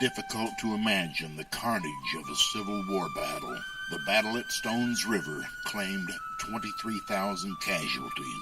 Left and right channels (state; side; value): identical; both; correlation 1.00